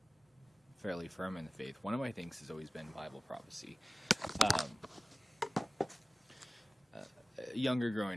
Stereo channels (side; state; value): both; normal; correlation 0.97